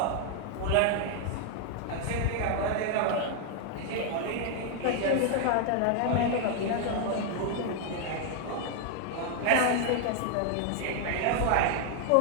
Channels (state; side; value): different; both; correlation 0.00